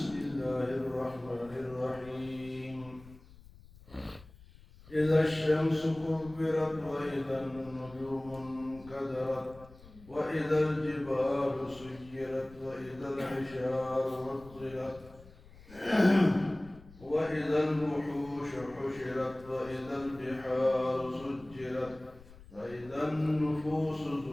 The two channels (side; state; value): left; noise; rumble, 21 dB below the sound